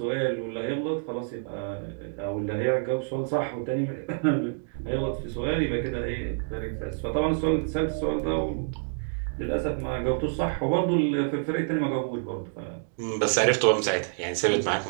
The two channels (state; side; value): silent; left; digital silence